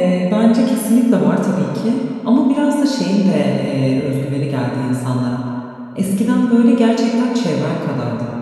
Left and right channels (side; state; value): both; identical; correlation 1.00